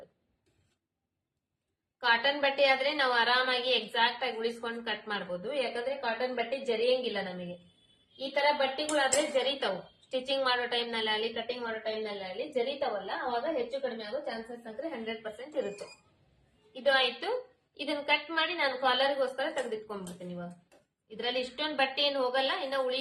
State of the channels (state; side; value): identical; both; correlation 1.00